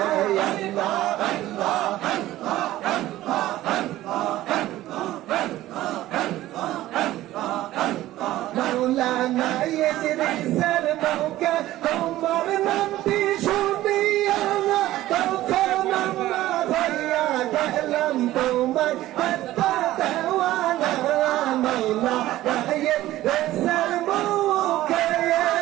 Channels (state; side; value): quieter; left; 15.3 dB